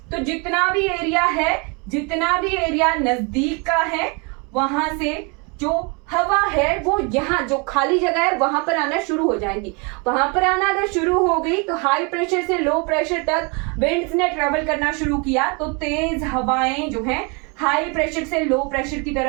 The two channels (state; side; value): quieter; left; 31.8 dB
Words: तो जितना भी एरिया है, जितना भी एरिया नजदीक का है, वहां से जो हवा है वो यहाँ जो खाली जगह है वहां पर आना शुरू हो जाएंगी। वहां पर आना अगर शुरू हो गई तो हाई प्रेशर से लो प्रेशर तक विंड्स ने ट्रेवल करना शुरू किया, तो तेज हवाएं जो है हाई प्रेशर से लो प्रेशर की